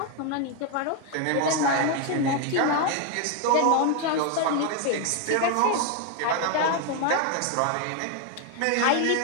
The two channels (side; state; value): both; different; correlation 0.01